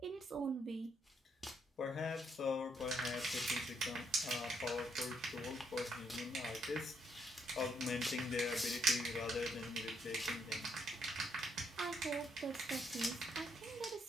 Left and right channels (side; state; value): both; normal; correlation 0.74